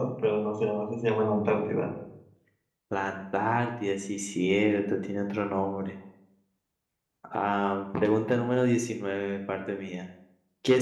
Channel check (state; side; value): identical; both; correlation 1.00